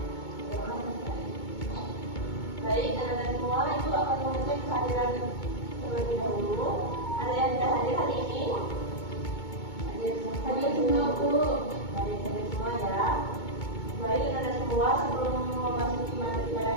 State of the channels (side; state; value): right; late; 2.2 ms